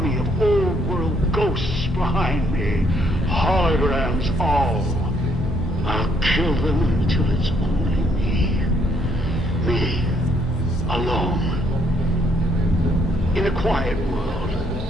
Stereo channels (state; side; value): normal; both; correlation 0.70